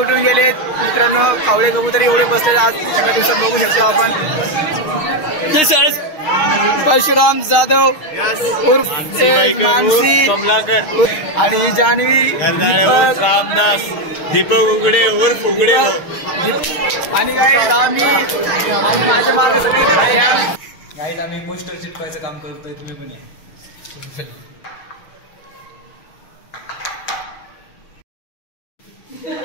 गेलेत। मित्रांनो कावळे कबूतर एवढे बसले आज एका दिवसात बघू शकतो आपण। परशुराम जाधव उर्फ मानसी आणि जान्हवी, दीपक रामदास, दीपक उघडे उर्फ उघडे। आणि गाईज आम्ही माझ्या मागे सगळे गाईज आम्ही पोस्टर चिटकवायचं काम करतोय, तुम्ही पण या।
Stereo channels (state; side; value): late; right; 6.5 ms